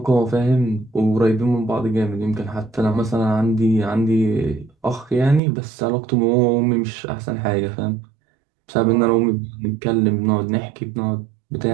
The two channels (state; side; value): drops out; left; at 5.4 s